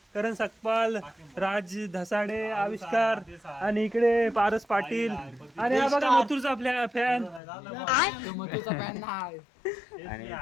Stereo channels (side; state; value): right; drops out; at 7.4 s